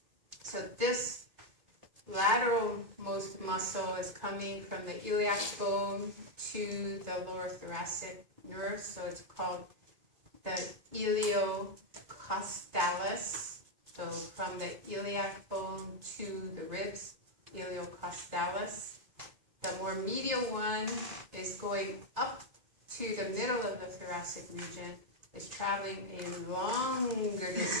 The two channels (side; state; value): left; late; 2.4 ms